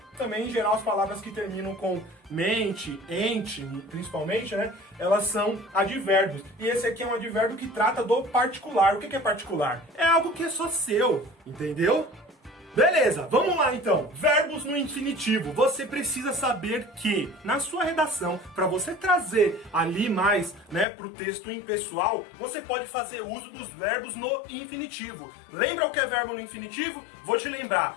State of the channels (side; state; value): right; drops out; at 20.9 s